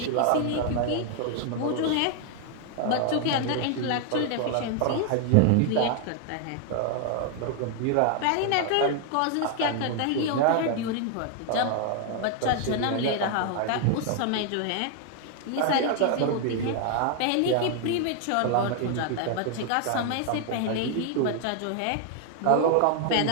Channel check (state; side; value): different; both; correlation 0.00